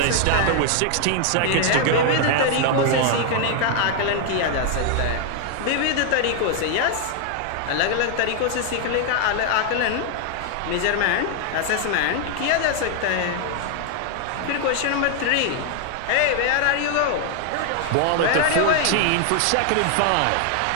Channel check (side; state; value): both; different; correlation 0.00